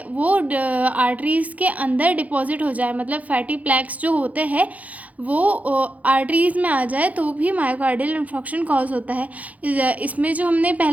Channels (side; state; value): left; late; 0.072 ms